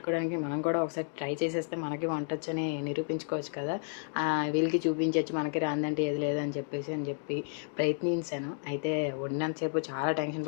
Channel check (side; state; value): right; silent; 57 dB below the other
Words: మనం కూడా ఒకసారి ట్రై చేసేస్తే మనకి వంటొచ్చని నిరూపించుకోవచ్చు కదా! వీళ్ళకి చూపించొచ్చు మనకి రానిదంటే ఏది లేదని చెప్పి ప్రయత్నించాను. అయితే వండినంత సేపు చాలా టెన్షన్